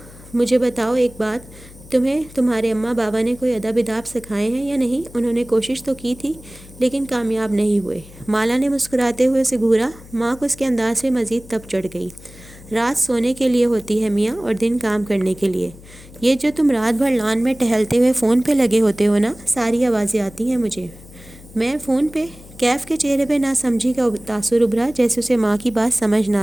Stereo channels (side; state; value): left; noise; hum, 20 dB below the sound